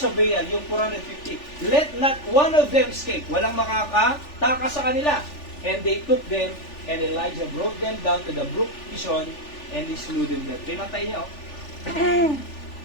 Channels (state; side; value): late; right; 3.4 ms